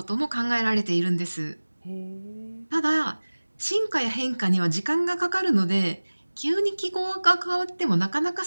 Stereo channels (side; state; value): both; inverted; correlation -1.00